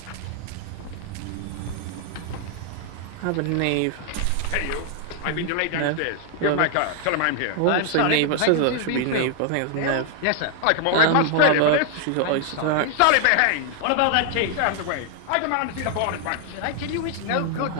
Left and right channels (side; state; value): both; different; correlation 0.00